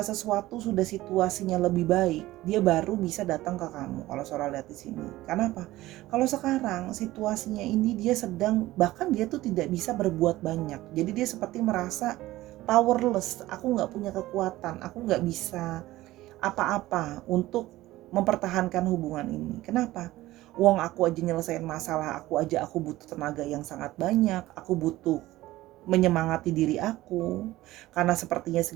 sesuatu sudah situasinya lebih baik, dia baru bisa datang ke kamu kalau Sora lihat di sini. Karena apa? Kalau sekarang situasinya ini dia sedang, bahkan dia tuh tidak bisa berbuat banyak. Jadi dia seperti merasa powerless, aku nggak punya kekuatan, aku nggak bisa apa-apa untuk mempertahankan hubungan ini. Kenapa? Wong aku aja nyelesain masalah, aku butuh tenaga yang sangat banyak, aku butuh menyemangati diri aku, karena sepertinya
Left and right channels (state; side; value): quieter; left; 16.9 dB